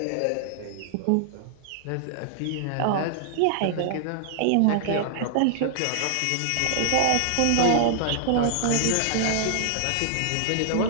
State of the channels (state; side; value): different; both; correlation -0.01